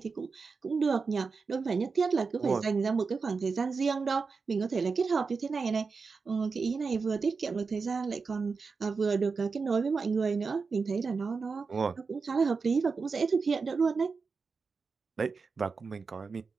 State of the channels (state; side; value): quieter; left; 4.8 dB